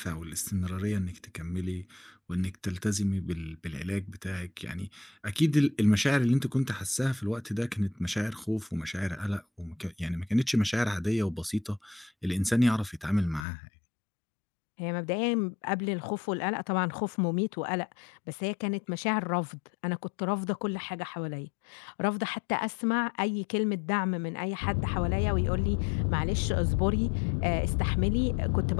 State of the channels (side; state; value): right; drops out; at 13.5 s